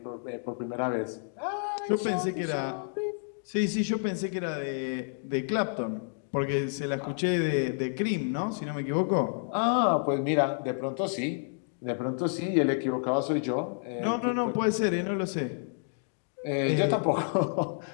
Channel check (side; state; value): right; silent; digital silence